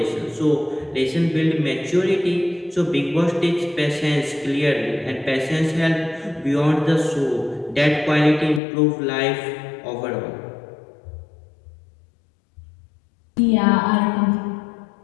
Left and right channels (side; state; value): right; drops out; at 8.6 s